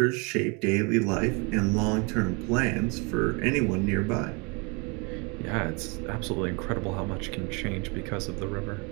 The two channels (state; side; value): quieter; left; 30.7 dB